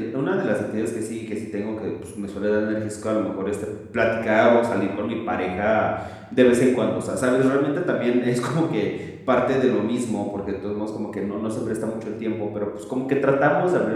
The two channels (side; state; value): both; identical; correlation 1.00